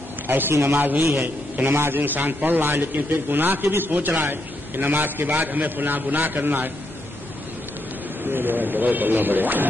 ایسی نماز نہیں ہے کہ نماز انسان پڑھ رہا ہے لیکن پھر گناہ کی بھی سوچ رہا ہے کہ نماز کے بعد ہمیں فلاں گناہ کرنا ہے۔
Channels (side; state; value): both; normal; correlation 0.79